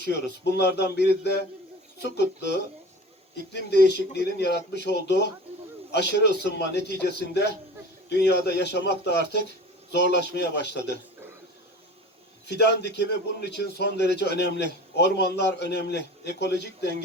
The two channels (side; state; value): both; normal; correlation 0.39